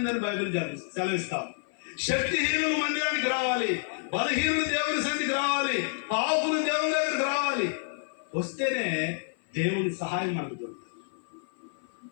బైబిల్ సెలవిస్తాం. శక్తిహీనులు మందిరానికి రావాలి, బలహీనులు దేవుని సన్నిధికి రావాలి, పాపులు దేవుని దగ్గరికి రావాలి. వస్తేనే దేవుని సహాయం మనకు దొరుకుతుంది.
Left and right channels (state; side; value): silent; right; 55 dB below the other